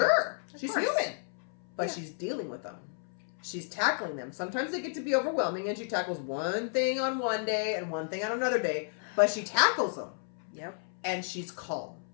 She's human. But she's dealing with them. She's tackling them. Sometimes they get to be overwhelming, and she tackles one thing on one day and one thing on another day. But she tackles them. Yep. And she's calm.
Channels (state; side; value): silent; right; 56 dB below the other